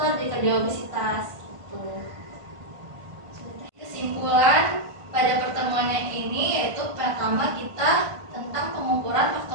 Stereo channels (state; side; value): late; left; 1.5 ms